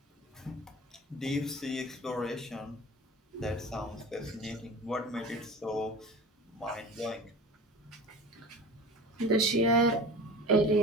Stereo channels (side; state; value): both; normal; correlation 0.36